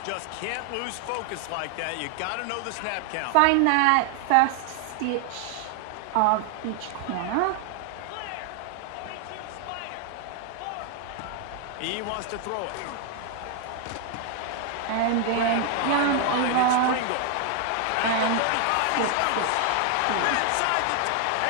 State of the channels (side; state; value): both; different; correlation 0.00